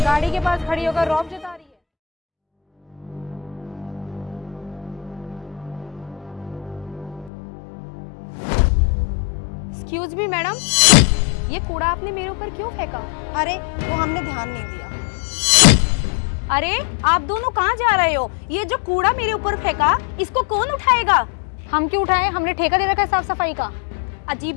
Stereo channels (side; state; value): right; drops out; at 7.3 s